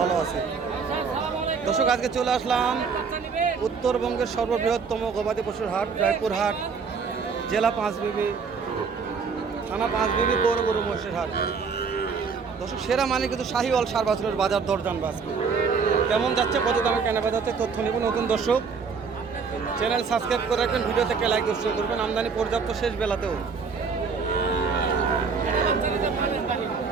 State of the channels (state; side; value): quieter; left; 5.4 dB